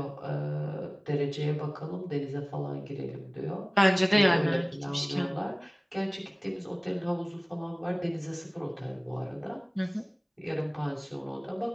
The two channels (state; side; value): identical; both; correlation 1.00